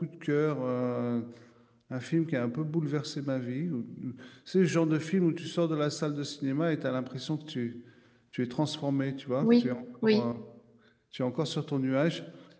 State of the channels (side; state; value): both; identical; correlation 1.00